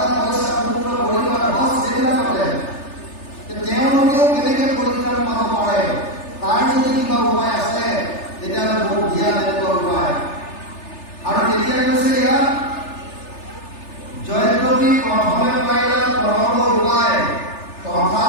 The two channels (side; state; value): right; late; 3.4 ms